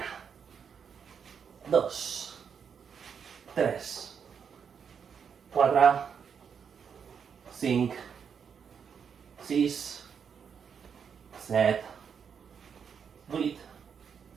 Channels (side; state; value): left; quieter; 7.0 dB